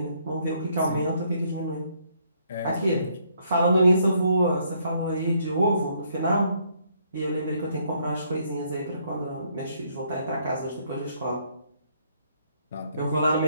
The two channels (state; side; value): inverted; both; correlation -0.69